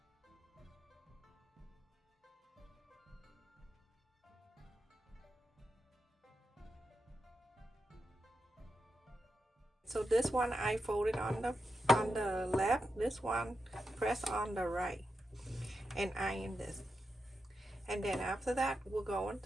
So this one I folded on the left, this one press on the right and iron this. And then after that we're going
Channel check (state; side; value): normal; both; correlation 0.87